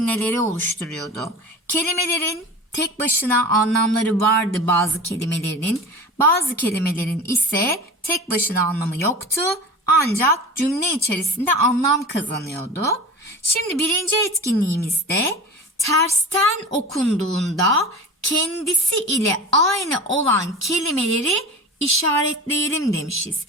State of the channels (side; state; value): both; normal; correlation 0.34